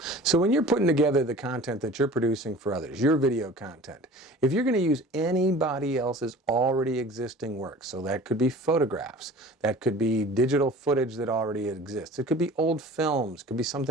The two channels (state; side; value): normal; both; correlation 0.43